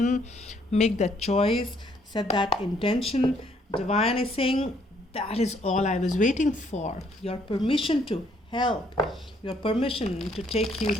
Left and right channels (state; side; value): normal; both; correlation 0.67